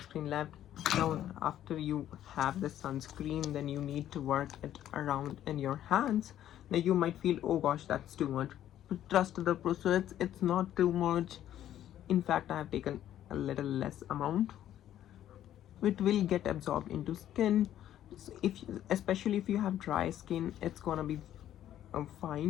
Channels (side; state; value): right; quieter; 11.7 dB